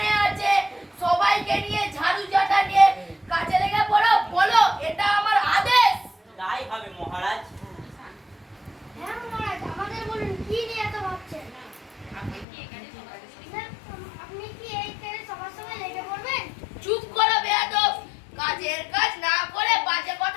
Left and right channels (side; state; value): right; drops out; at 12.5 s